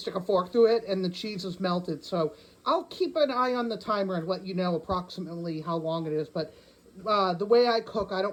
a fork through it and the cheese is melted. So I'll keep an eye on the timer and let you know approximately how long it is. But the way I cook, I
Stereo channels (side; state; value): both; identical; correlation 1.00